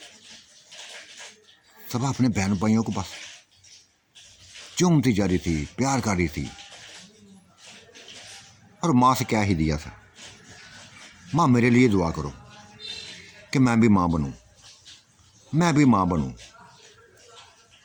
सबा अपने बहन भाइयों को बस चूमती जा रही थी, प्यार कर रही थी। और माँ से क्या ही दिया था, माँ मेरे लिए दुआ करो कि मैं भी माँ बनूं, मैं भी माँ बनूं।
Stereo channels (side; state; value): both; identical; correlation 1.00